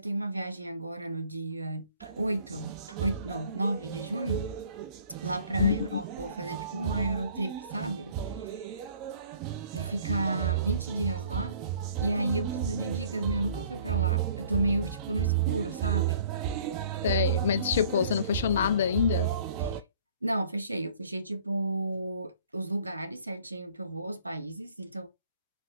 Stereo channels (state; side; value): inverted; both; correlation -0.53